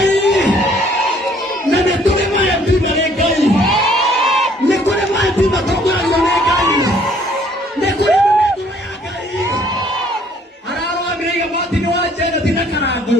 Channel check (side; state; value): both; normal; correlation 0.61